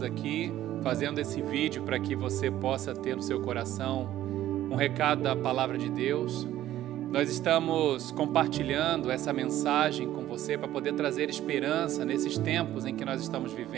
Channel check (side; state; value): left; quieter; 13.4 dB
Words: aqui fazendo esse vídeo para que você possa ter no seu coração um recado da Palavra de Deus. Nós estamos compartilhando essa mensagem com você para poder trazer esperança nesses tempos em que nós estamos